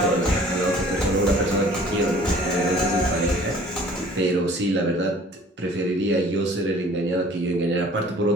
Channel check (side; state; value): both; normal; correlation 0.51